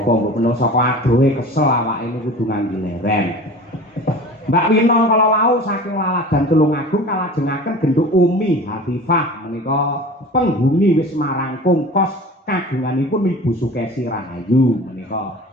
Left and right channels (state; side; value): normal; both; correlation 0.39